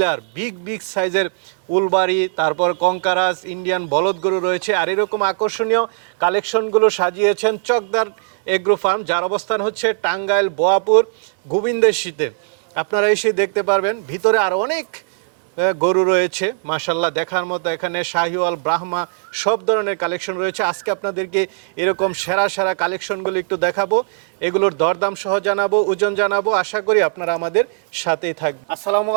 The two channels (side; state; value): left; silent; 62 dB below the other